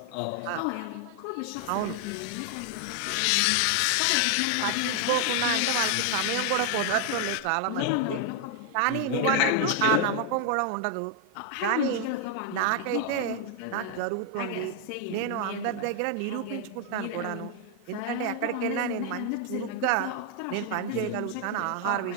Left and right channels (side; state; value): both; different; correlation 0.00